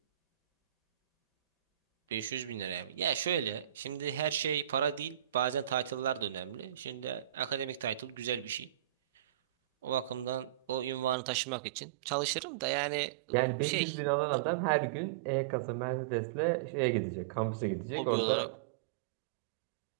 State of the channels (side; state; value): left; drops out; at 11.2 s